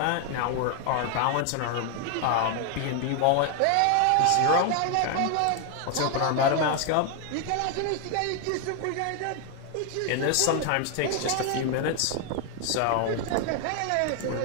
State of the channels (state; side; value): different; both; correlation 0.01